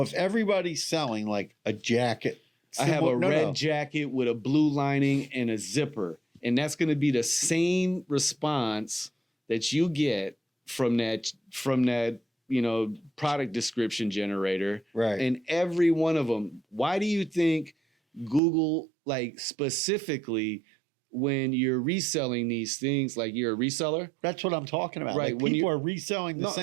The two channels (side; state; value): left; drops out; at 18.4 s